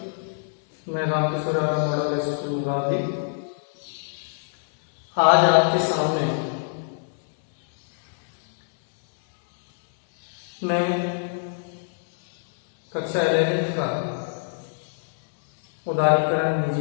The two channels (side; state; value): right; silent; digital silence